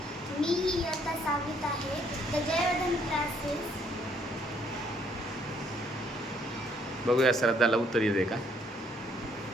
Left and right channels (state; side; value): normal; both; correlation 0.66